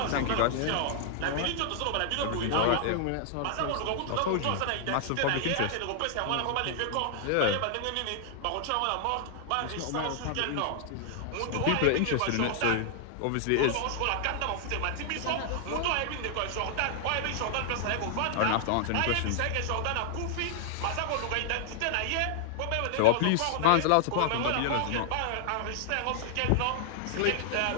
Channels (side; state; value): both; different; correlation 0.00